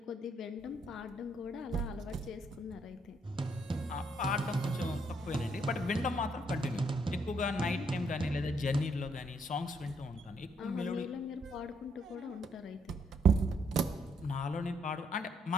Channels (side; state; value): both; normal; correlation 0.72